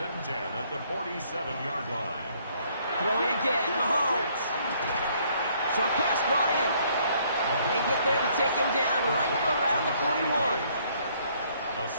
10 at the 47-yard line. Throwing again, Mahomes. Short pass brought in. They get there to take him down right around the 41. A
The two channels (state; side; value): inverted; both; correlation -0.65